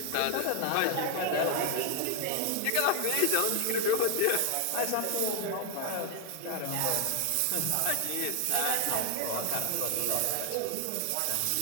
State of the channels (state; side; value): different; both; correlation 0.00